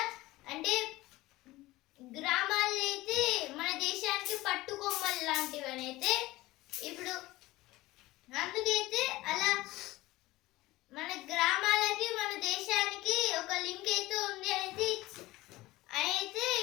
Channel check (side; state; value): right; quieter; 18.7 dB